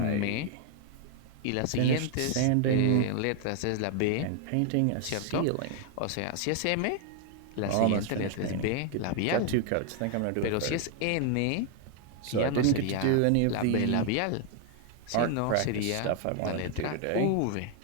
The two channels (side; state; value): both; different; correlation 0.01